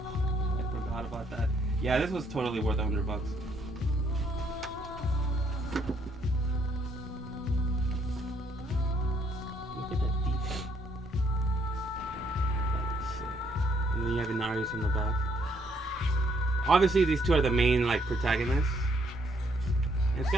I forgot about that. Yeah, this was totally worth $100. Look at that detail. That looks sick. And then you have Inarius in the back. Obviously, these two are the main like protagonists. And it's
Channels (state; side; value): normal; both; correlation 0.70